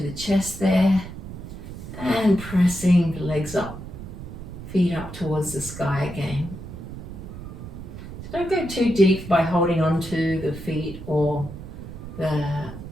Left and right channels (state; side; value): noise; right; rumble, 11 dB below the sound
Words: the chest there and pressing the legs up, feet up towards the sky again. So don't go too deep by holding on to the feet or